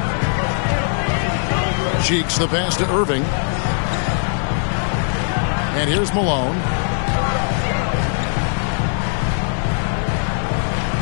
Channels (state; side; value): silent; right; digital silence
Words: Cheeks the pass to Irving. And here's Malone.